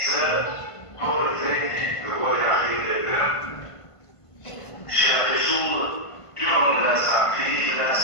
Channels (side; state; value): right; late; 1.5 ms